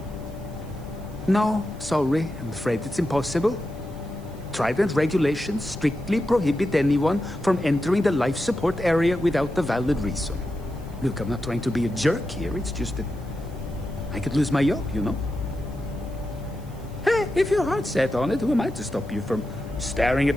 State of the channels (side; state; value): right; noise; hiss, 26 dB below the sound